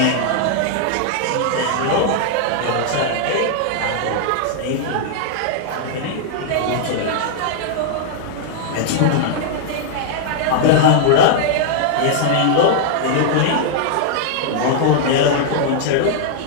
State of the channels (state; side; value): different; both; correlation -0.01